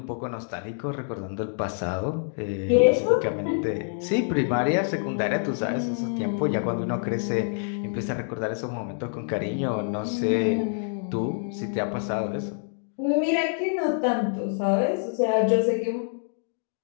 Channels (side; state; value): right; silent; digital silence